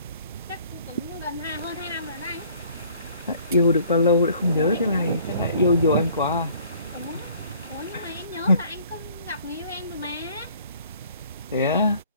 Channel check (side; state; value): both; inverted; correlation -0.56